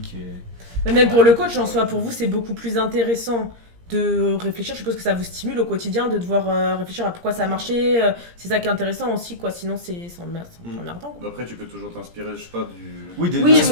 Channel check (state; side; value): late; left; 17 ms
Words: Mais même pour le coach en soi, pour vous c'est beaucoup plus intéressant de réfléchir, je suppose que ça vous stimule au quotidien de devoir réfléchir à pourquoi ça a marché, c'est ça qui est intéressant aussi quoi, sinon c'est emmerdant. Après tu peux toujours t'inspirer, je sais pas du... Oui,